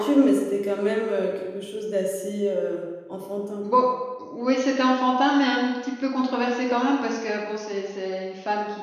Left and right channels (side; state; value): both; identical; correlation 1.00